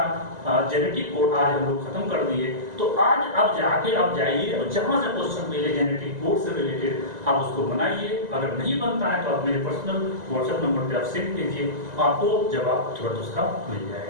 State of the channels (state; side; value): late; left; 2.0 ms